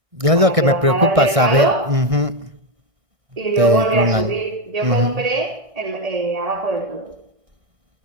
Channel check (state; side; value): late; left; 1.6 ms